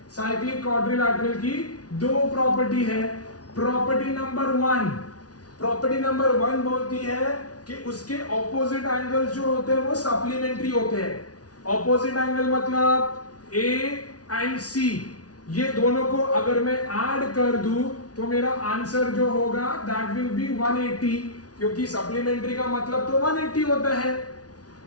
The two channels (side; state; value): right; late; 0.68 ms